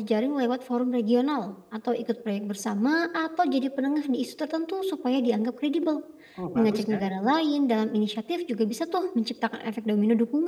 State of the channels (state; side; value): identical; both; correlation 1.00